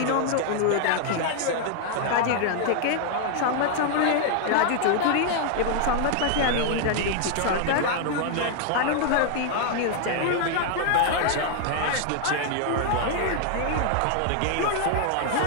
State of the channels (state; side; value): different; both; correlation 0.00